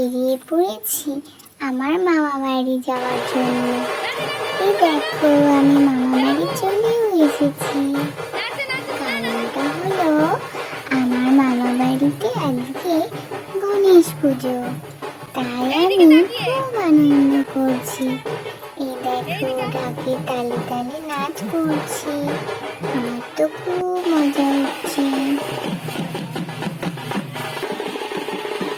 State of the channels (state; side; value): identical; both; correlation 1.00